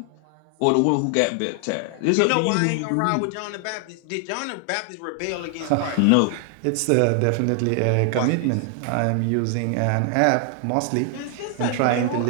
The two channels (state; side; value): different; both; correlation 0.00